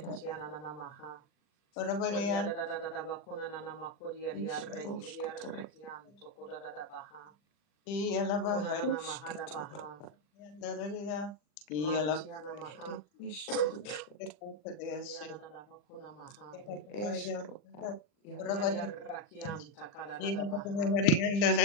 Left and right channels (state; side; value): late; right; 40 ms